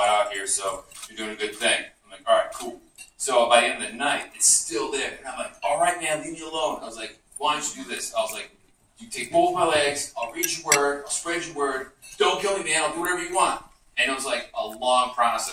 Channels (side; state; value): both; identical; correlation 1.00